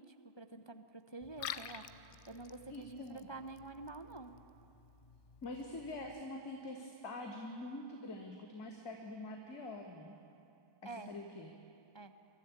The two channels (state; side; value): late; right; 1.5 ms